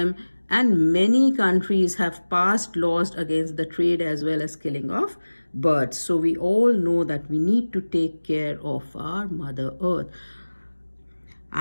and many countries have passed laws against the trade as well as killing of birds. So we all know that we need to take care of our Mother Earth.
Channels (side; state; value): both; inverted; correlation -1.00